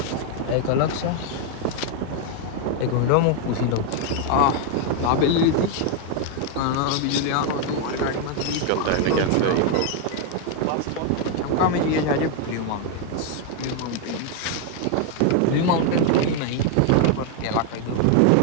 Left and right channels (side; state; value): both; different; correlation 0.01